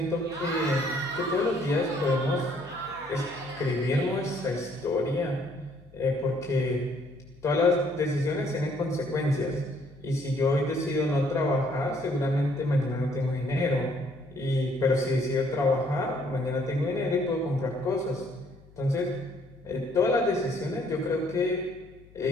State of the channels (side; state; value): left; noise; hum, 25 dB below the sound